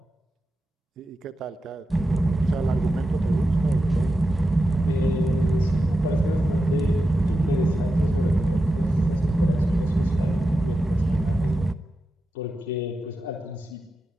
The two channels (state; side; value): normal; both; correlation 0.90